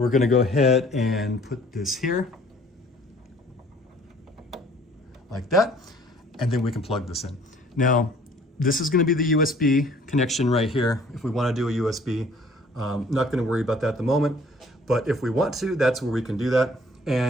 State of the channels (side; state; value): both; normal; correlation 0.56